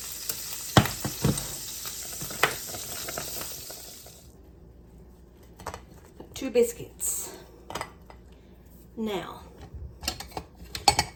Two biscuits. Now,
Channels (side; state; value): both; identical; correlation 1.00